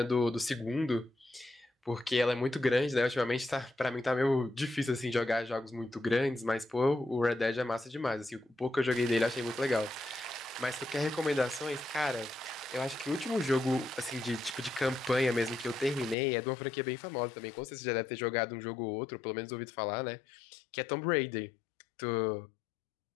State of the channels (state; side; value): drops out; right; at 16.2 s